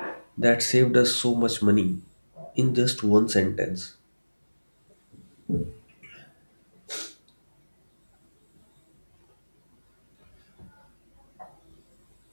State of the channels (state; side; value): inverted; both; correlation -1.00